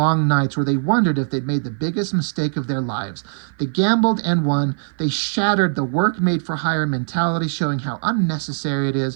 nights where they wondered if they'd made the biggest mistake of their lives. They gambled and won. They shattered the work-made-for-hire mentality, showing how unnecessary it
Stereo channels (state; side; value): silent; left; 56 dB below the other